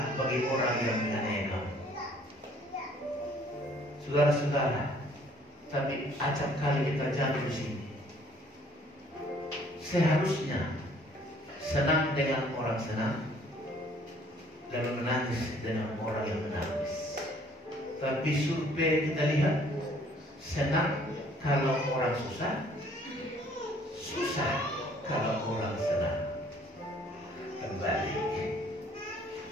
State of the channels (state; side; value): normal; both; correlation 0.59